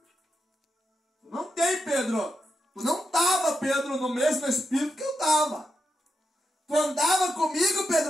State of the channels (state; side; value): normal; both; correlation 0.85